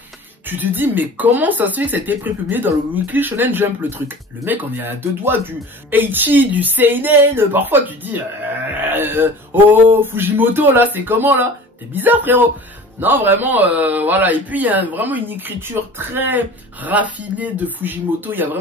tu te dis, mais comment ça se fait que ça a été prépublié dans le Weekly Shonen Jump, le truc? Le mec, on est à deux doigts du Eichi, du Seinen. Parfois, tu te dis, oh, Fujimoto, là, c'est comment, là? T'es bizarre, frérot. Non, vraiment, voilà. Et puis, il y a vraiment une écriture très raffinée de Fujimoto. Il y a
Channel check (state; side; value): normal; both; correlation 0.41